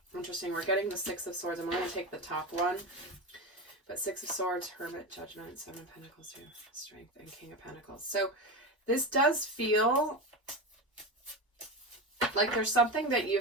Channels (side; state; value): both; normal; correlation 0.20